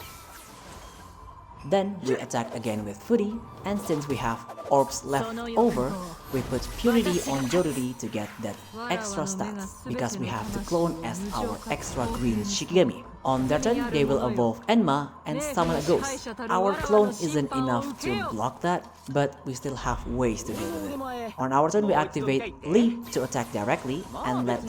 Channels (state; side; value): identical; both; correlation 1.00